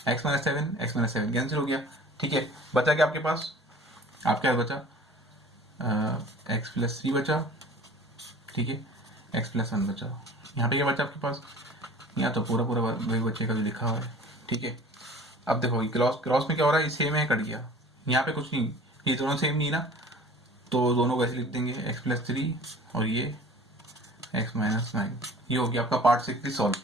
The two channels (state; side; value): normal; both; correlation 0.45